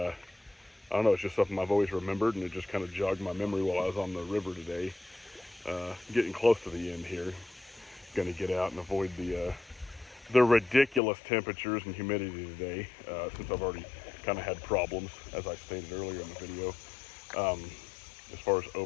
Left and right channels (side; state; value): right; drops out; at 11.0 s